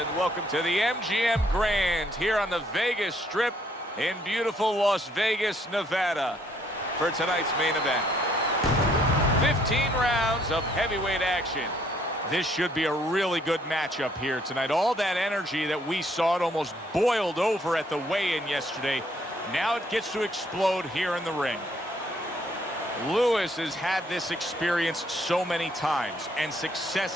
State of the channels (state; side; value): normal; both; correlation 0.67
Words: welcome to the MGM Grand here on the Vegas Strip in beautiful Las Vegas, Nevada for tonight's main event. 15 rounds of heavyweight action. This should be a really good matchup here tonight. All that energy that we saw, it almost boiled over at the weigh-in yesterday. Now it gets to explode here in the ring. Lewis has had this experience so many times, and